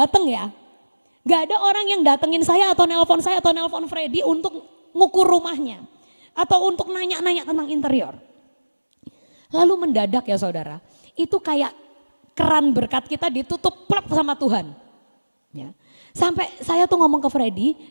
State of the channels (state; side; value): inverted; both; correlation -1.00